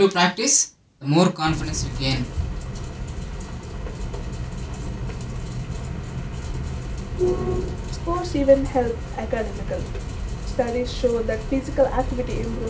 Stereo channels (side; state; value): both; identical; correlation 1.00